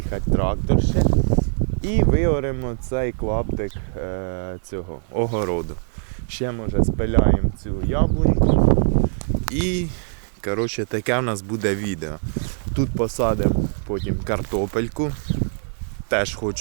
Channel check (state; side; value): silent; left; 64 dB below the other